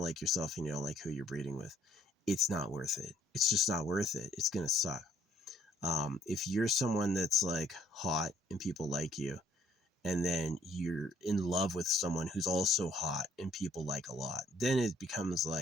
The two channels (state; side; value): normal; both; correlation 0.63